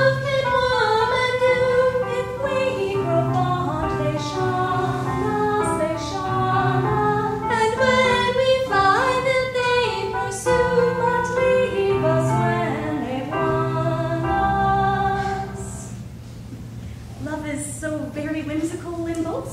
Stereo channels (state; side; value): identical; both; correlation 1.00